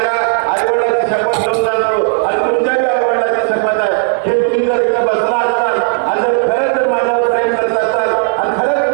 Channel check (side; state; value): left; silent; digital silence